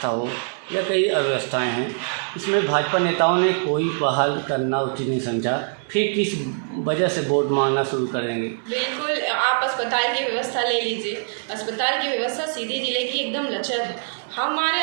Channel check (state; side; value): silent; left; digital silence